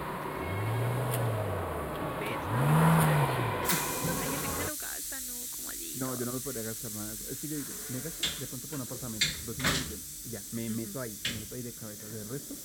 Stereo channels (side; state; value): both; identical; correlation 1.00